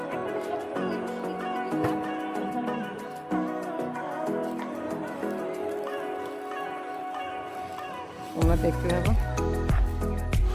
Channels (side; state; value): both; identical; correlation 1.00